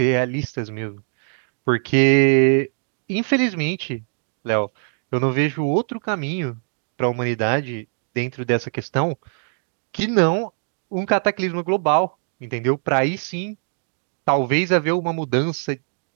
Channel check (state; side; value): silent; left; digital silence